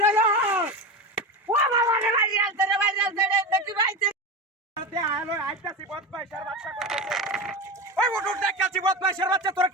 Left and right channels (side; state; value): both; normal; correlation 0.22